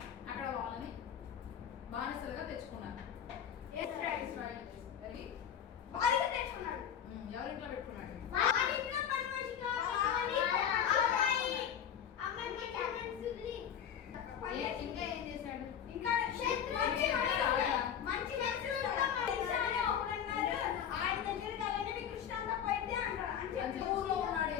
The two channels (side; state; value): right; quieter; 8.8 dB